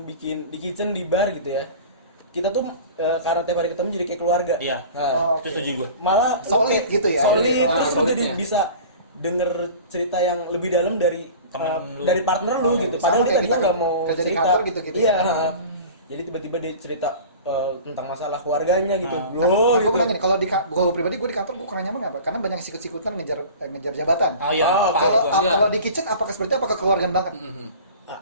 bikin di kitchen di bar gitu ya. Kita tuh karena tiap hari ketemu jadi kayak keluarga. Iya. Nah, Itu setuju gue. malah Solid gitu ya. Solid, terus udah solidnya. bisa denger cerita yang lebih dalam dari Temen lu. dari partner lu gitu. Sama Padahal kayak kita kita nggak mau kerja di cerita. kantor gitu-gitu. Iya. Jadi tiba-tiba dia cerita tentang masalah keluarganya gitu. Nah, Bro, gue gitu. bilang gini, kalau pribadi gue di kantor gue kurang nyaman apa? Karena banyak sikut-sikutan ngejar jabatan. Oh iya. Kalau di kitchen apakah seperti apa kekeluargaan banget?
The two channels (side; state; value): both; inverted; correlation -0.39